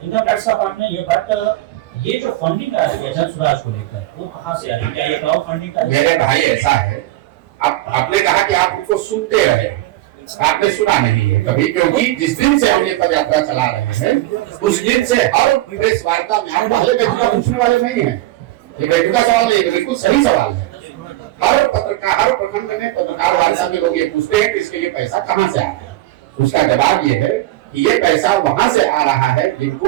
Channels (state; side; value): quieter; left; 16.2 dB